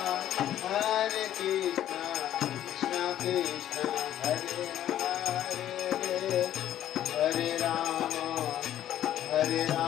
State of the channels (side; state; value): right; quieter; 11.8 dB